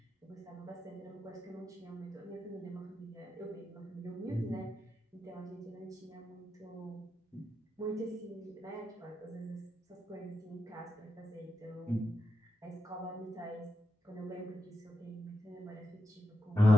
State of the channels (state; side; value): normal; both; correlation 0.88